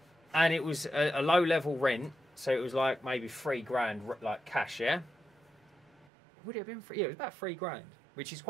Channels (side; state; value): left; drops out; at 6.1 s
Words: And it was a low level rent. So it was like maybe $3,000 like cash, yeah? Would it have been free? Yeah, it was about $3,000, which is